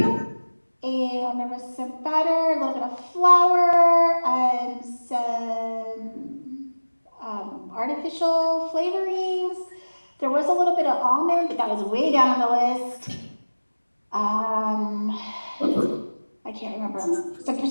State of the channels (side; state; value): both; inverted; correlation -1.00